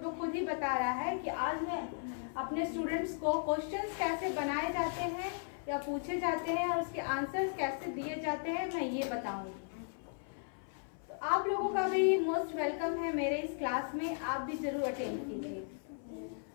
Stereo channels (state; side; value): silent; right; 54 dB below the other